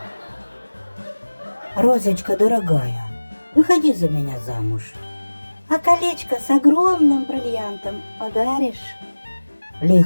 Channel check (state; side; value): inverted; both; correlation -1.00